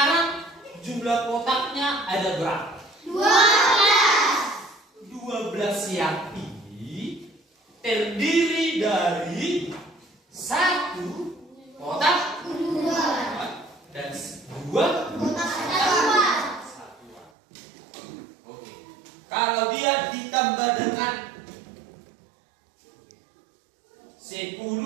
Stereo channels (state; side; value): drops out; left; at 17.3 s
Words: jumlah kotaknya ada berapa? 12 yang ini terdiri dari satu kotak dan dua kotak satuan. Oke. Kalau dia ditambah dengan